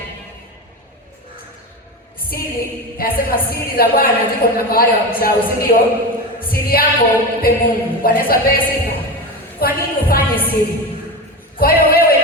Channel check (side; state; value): both; normal; correlation 0.22